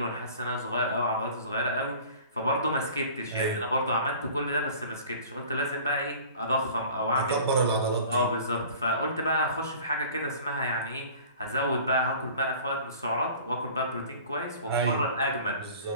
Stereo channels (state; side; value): inverted; both; correlation -0.45